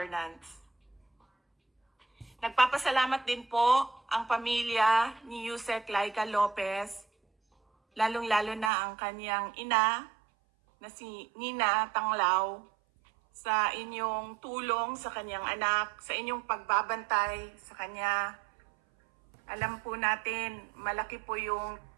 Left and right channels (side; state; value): left; drops out; at 8.7 s